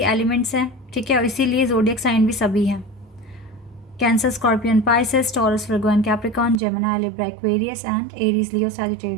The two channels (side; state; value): left; drops out; at 6.6 s